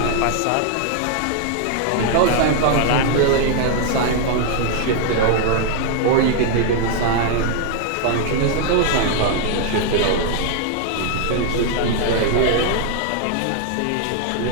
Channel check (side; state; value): both; different; correlation 0.00